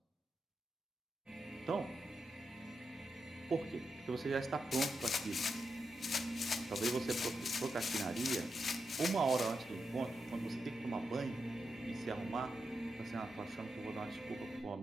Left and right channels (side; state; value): both; normal; correlation 0.86